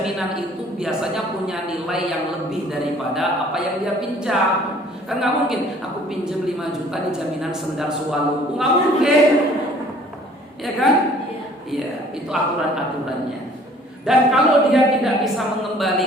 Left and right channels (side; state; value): both; normal; correlation 0.55